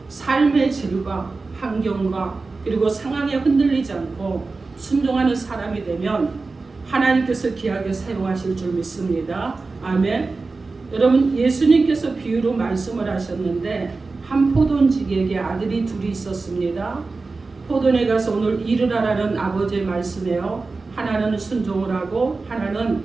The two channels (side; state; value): left; quieter; 3.9 dB